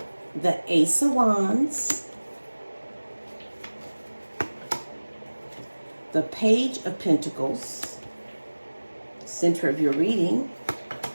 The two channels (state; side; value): inverted; both; correlation -1.00